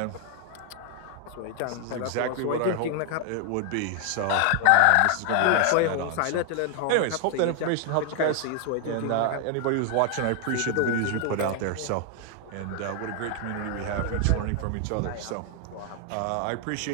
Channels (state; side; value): different; both; correlation 0.00